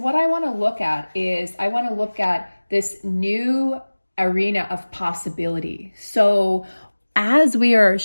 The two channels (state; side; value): inverted; both; correlation -1.00